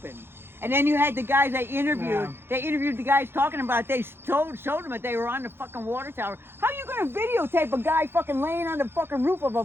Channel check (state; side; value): late; left; 0.11 ms